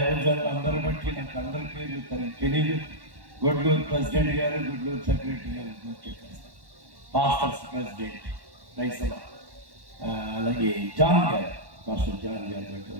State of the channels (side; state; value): left; late; 1.1 ms